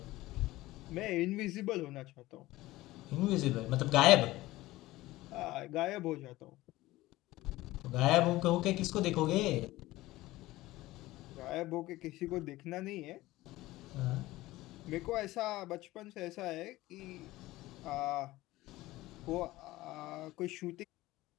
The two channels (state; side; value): quieter; right; 17.9 dB